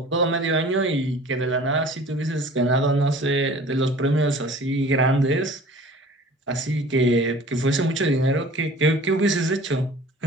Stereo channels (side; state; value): both; normal; correlation 0.46